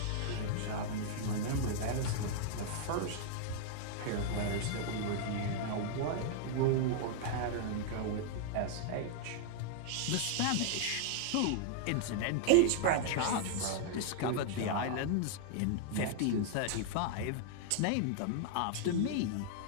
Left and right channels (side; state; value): both; different; correlation -0.01